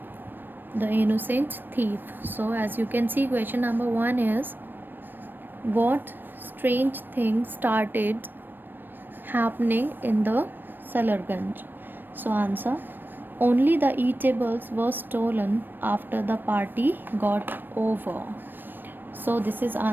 The Innocent Thief. So, as you can see, question number 1 is, what strange thing started happening in the Salarganj? So, answer, only the eatables were stolen after the party got over. So, this is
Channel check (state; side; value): late; left; 0.094 ms